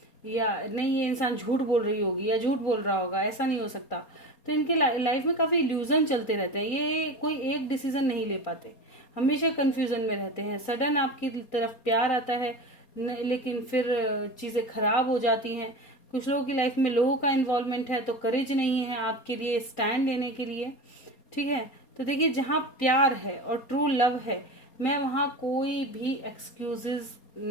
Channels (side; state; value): right; late; 4.3 ms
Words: या नहीं ये इंसान झूठ बोल रही होगी या झूठ बोल रहा होगा, ऐसा नहीं हो सकता। तो इनके लाइफ में काफ़ी इल्यूजन चलते रहते हैं, ये कोई एक डिसीजन नहीं ले पाते, हमेशा कंफ्यूजन में रहते हैं। सडन आपकी तरफ प्यार आता है लेकिन फिर चीज़ें खराब हो जाती हैं। कुछ लोगों की लाइफ में लोगों का इन्वॉल्वमेंट है तो करेज नहीं है आपके लिए स्टैंड लेने के लिए। ठीक है, तो देखिए जहाँ प्यार है और ट्रू लव है, मैं वहाँ कोई भी एक्सक्यूजेज